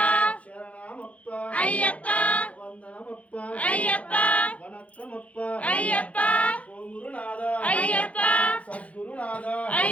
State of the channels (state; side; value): late; right; 0.065 ms